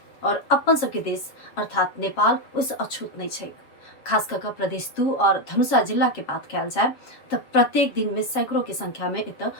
और अपन सबके देश अर्थात नेपाल ओहिसँ अछूत नहीं छै। खास कर प्रदेश 2 और धनुषा जिला के बात कल जाए तो प्रत्येक दिन में सैकड़ों के संख्या में एत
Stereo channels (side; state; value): right; late; 7.3 ms